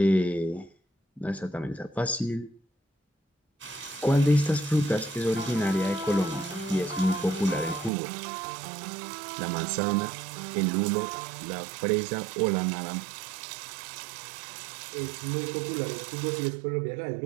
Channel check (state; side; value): drops out; left; at 7.9 s